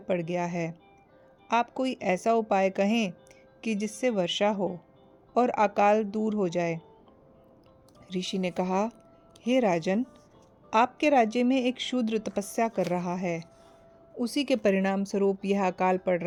गया है। आप कोई ऐसा उपाय कहें कि जिससे वर्षा हो और अकाल दूर हो जाए। ऋषि ने कहा, हे राजन, आपके राज्य में एक शूद्र तपस्या कर रहा है। उसी के परिणाम स्वरूप यह अकाल पड़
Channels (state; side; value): identical; both; correlation 1.00